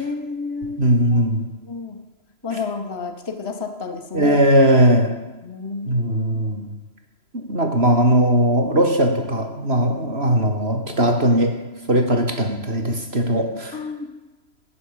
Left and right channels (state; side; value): late; left; 3.0 ms